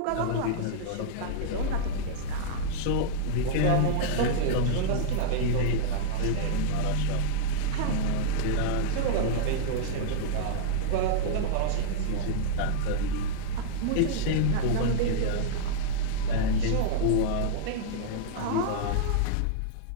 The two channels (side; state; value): both; different; correlation -0.02